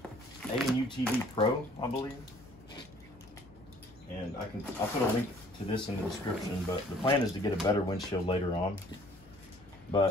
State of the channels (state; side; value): noise; left; hum, 25 dB below the sound